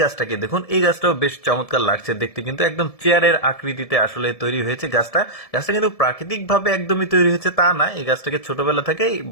গাছটাকে দেখুন, এই গাছটাও বেশ চমৎকার লাগছে দেখতে, কিন্তু একদম চেয়ারের আকৃতিতে আসলে তৈরি হয়েছে গাছটা। গাছটা কিন্তু প্রাকৃতিক ভাবে একদমই তৈরি হয়েছে তা না, এই গাছটাকে ছোটবেলা থেকেই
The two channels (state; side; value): late; right; 1.7 ms